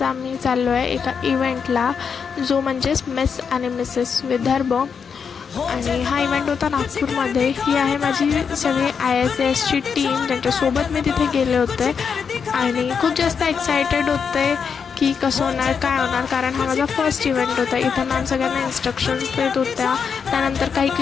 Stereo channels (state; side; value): quieter; right; 6.4 dB